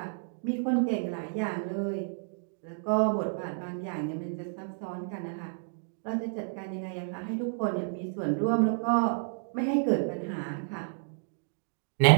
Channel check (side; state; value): left; silent; digital silence